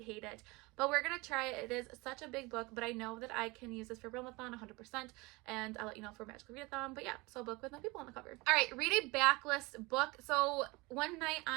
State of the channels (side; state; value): left; quieter; 24.2 dB